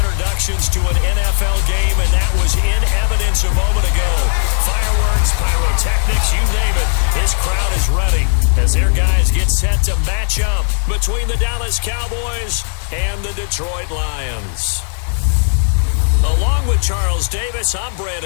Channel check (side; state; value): right; silent; digital silence